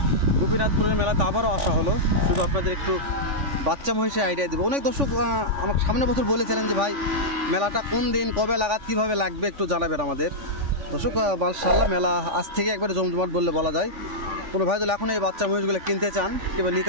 গোপীনাথপুরের মেলাতে আবারও আসা হলো। শুধু আপনাদের একটু বাচ্চা মহিষের আইডিয়া দেবো। অনেক দর্শক আমাকে সামনের বছর বলেছিলেন যে ভাই মেলাটা কোন দিন কবে লাগাত কীভাবে লাগবে একটু জানাবেন আমাদের। দর্শক মাশাআল্লাহ মেলা আজ থেকে একবারে জমজমাট বললে বলা যায়। কোনো ভাই যদি এখন এই বাচ্চা মহিষগুলো কিনতে চান কিংবা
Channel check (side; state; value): left; late; 3.5 ms